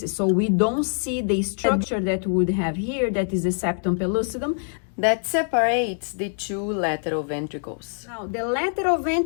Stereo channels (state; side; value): silent; right; 62 dB below the other